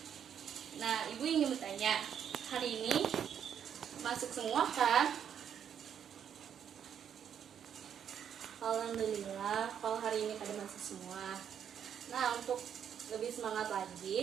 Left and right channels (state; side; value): quieter; left; 8.6 dB